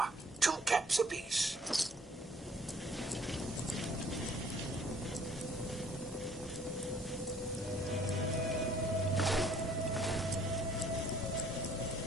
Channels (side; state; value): both; normal; correlation 0.59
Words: 2 caps apiece.